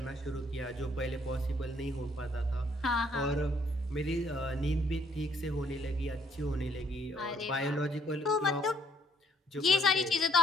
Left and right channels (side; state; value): both; normal; correlation 0.66